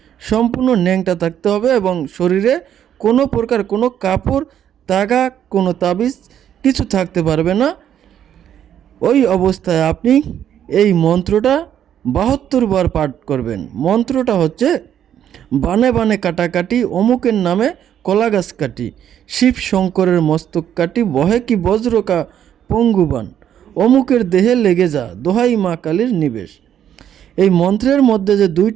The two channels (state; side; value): quieter; left; 9.9 dB